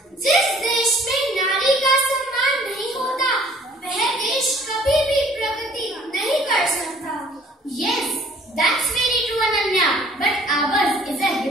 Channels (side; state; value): both; normal; correlation 0.55